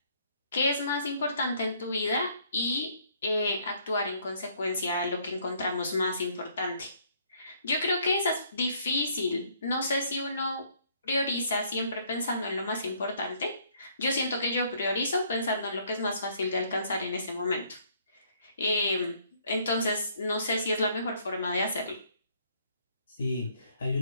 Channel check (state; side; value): inverted; both; correlation -0.64